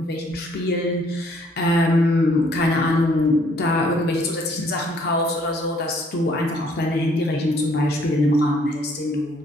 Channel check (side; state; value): both; normal; correlation 0.63